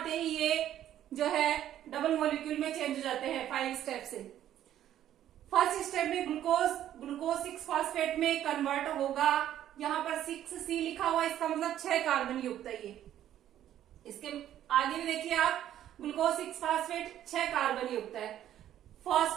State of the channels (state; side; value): quieter; left; 11.6 dB